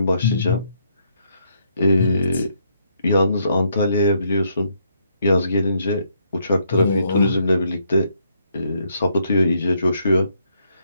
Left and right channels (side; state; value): both; inverted; correlation -0.73